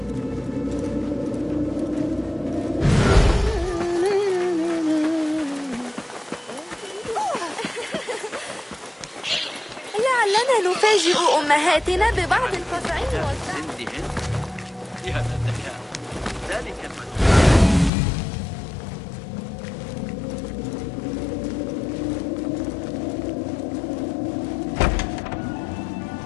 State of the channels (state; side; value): drops out; right; at 17.9 s